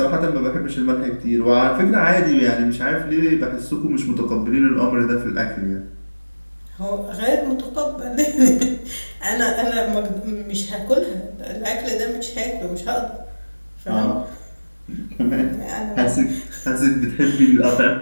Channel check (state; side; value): inverted; both; correlation -1.00